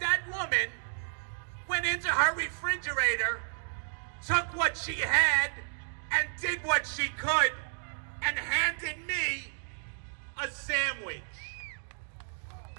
woman went into her refrigerator, took what she had, and did what she could and handed me a sandwich.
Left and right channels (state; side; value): silent; left; digital silence